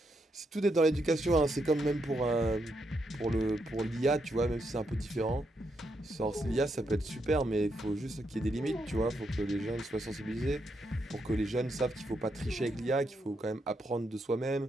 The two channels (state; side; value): normal; both; correlation 0.80